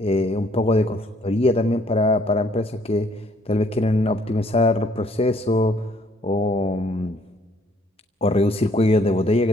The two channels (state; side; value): normal; both; correlation 0.64